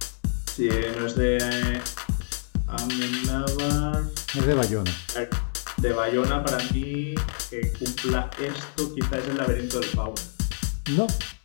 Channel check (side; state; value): right; silent; 60 dB below the other